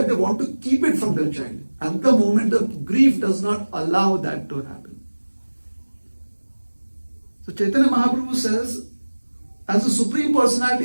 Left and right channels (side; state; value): both; inverted; correlation -1.00